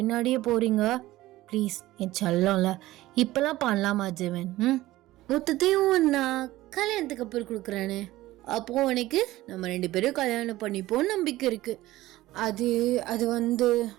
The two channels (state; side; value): quieter; left; 16.8 dB